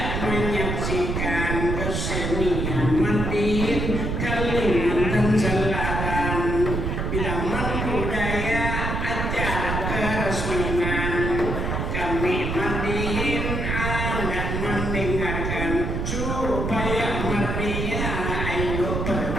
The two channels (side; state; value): right; noise; rumble, 1 dB below the sound